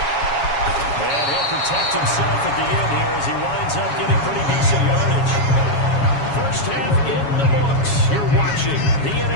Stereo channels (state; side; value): late; right; 7.2 ms